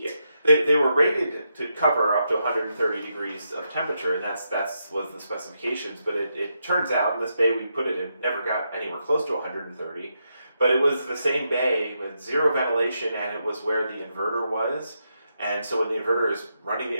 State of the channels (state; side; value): inverted; both; correlation -0.82